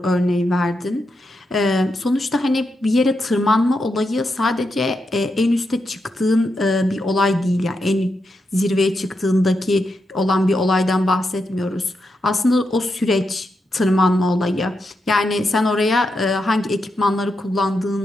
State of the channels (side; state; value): both; normal; correlation 0.85